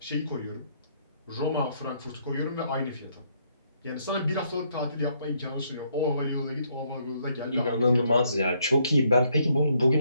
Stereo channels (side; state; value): both; inverted; correlation -0.71